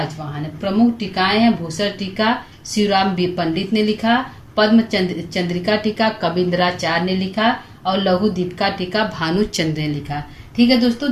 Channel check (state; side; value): identical; both; correlation 1.00